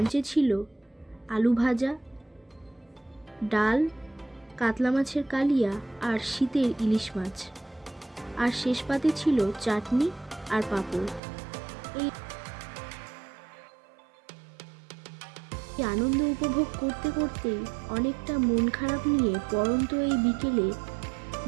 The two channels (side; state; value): left; drops out; at 11.2 s